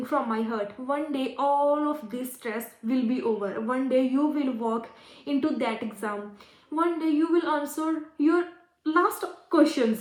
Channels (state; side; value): identical; both; correlation 1.00